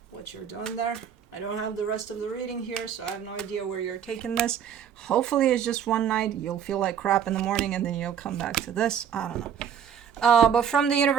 what you're doing there. I don't have the rest of the reading here, so I have no idea where you're taking this. Hopefully it's just one night. You'll feel like crap in the morning, and then you'll come back to this. I don't know. But from the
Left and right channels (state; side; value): quieter; left; 8.4 dB